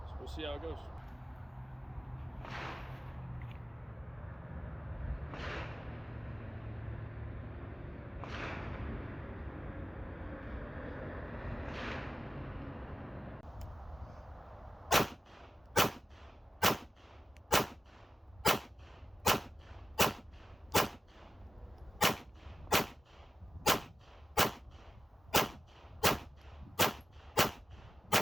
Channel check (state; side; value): normal; both; correlation 0.94